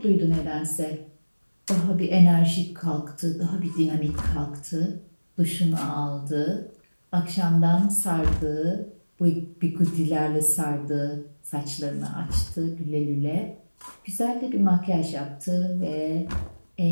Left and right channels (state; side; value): inverted; both; correlation -1.00